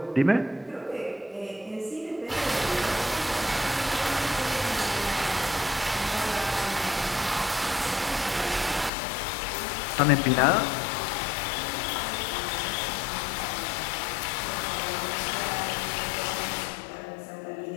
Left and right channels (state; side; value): drops out; right; at 8.9 s